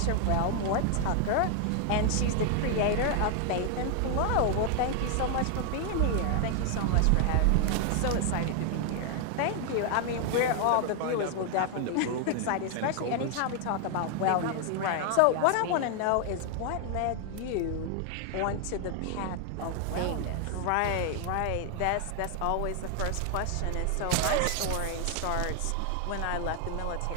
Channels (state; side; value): different; both; correlation 0.00